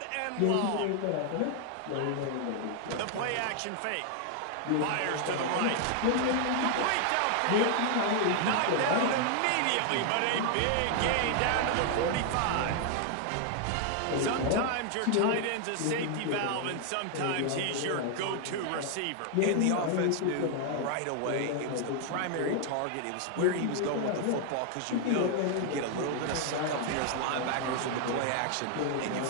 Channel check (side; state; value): both; different; correlation 0.00